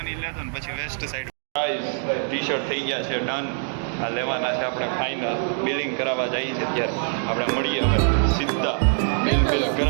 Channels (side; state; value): left; silent; 63 dB below the other